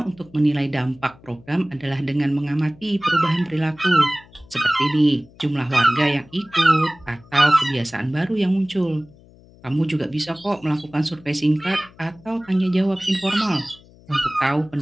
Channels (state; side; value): noise; left; hum, 25 dB below the sound